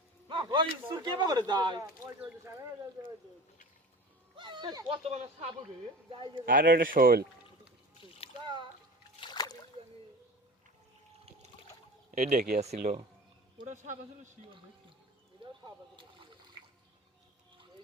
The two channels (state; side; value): normal; both; correlation 0.36